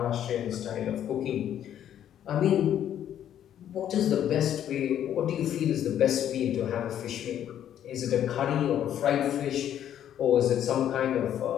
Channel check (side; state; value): right; quieter; 10.4 dB